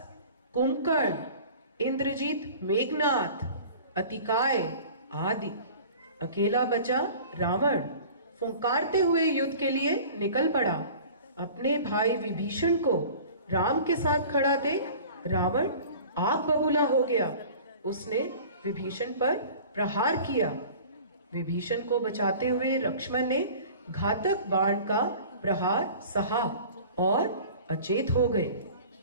कुंभकर्ण, इंद्रजीत, मेघनाथ, अतिकाय आदि। अकेला बचा रावण। फुंकारते हुए युद्ध के लिए निकल पड़ा। अपने भाई विभीषण को राम के साथ खड़ा देख रावण आग बबूला हो गया। उसने विभीषण पर प्रहार किया। विभीषण को बचाते हुए लक्ष्मण ने घातक बाण का प्रहार सहा और अचेत हो गए।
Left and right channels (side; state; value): both; inverted; correlation -0.43